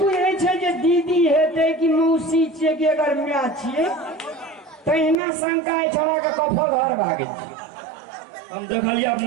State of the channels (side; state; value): left; drops out; at 5.2 s